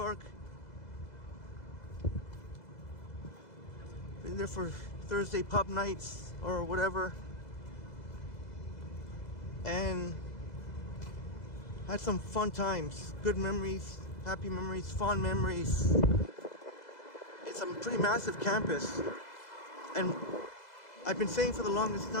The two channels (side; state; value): right; late; 2.0 ms